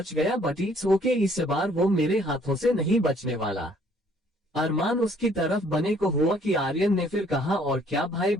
गया, बट इट्स ओके, इस बार वो मेरे हाथों से नहीं बचने वाला। अरमान उसकी तरफ बने को हुआ कि आर्यन ने फिर कहा, और क्या भाई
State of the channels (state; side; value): normal; both; correlation 0.61